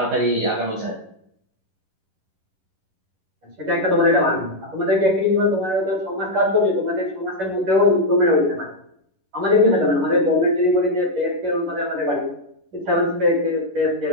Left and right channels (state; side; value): late; left; 11 ms